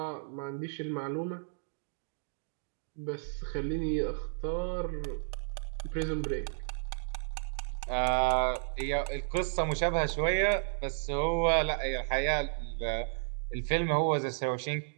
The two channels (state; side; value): silent; left; digital silence